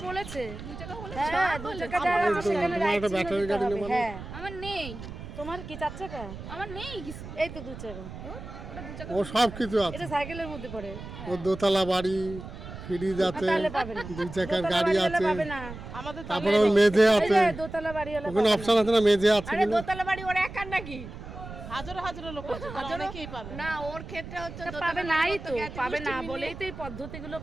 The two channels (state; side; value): noise; right; rumble, 12 dB below the sound